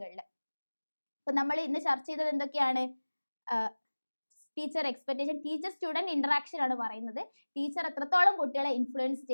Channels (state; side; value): inverted; both; correlation -1.00